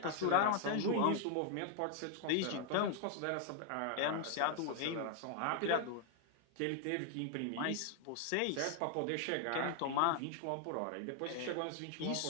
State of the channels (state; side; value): different; both; correlation 0.00